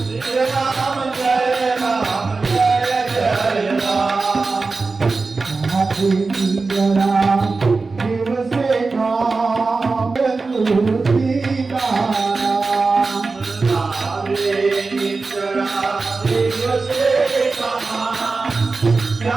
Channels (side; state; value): left; quieter; 4.0 dB